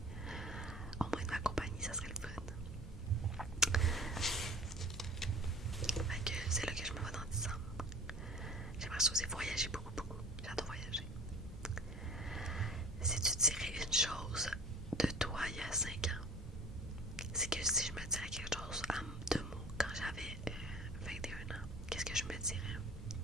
au moins de ma compagnie, ça serait le fun. Fait que c'est là que je me vois dans 10 ans. J'aimerais ça aussi voyager beaucoup, beaucoup. J'adore voyager. Si tu dirais une chose de toi il y a 5 ans, c'est que si je me dirais quelque chose en 2 mots quand j'avais 21 ans, qu'est-ce que je me dirais?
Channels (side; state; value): both; normal; correlation 0.44